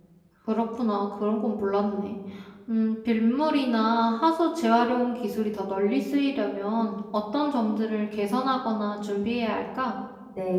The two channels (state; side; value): identical; both; correlation 1.00